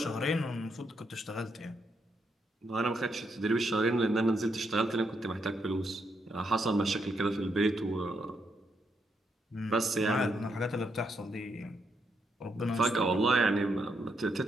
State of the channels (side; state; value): both; normal; correlation 0.79